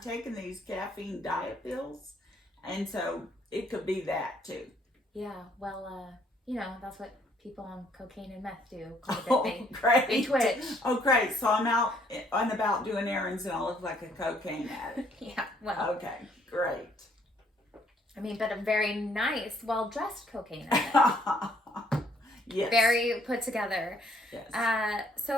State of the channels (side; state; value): both; normal; correlation 0.66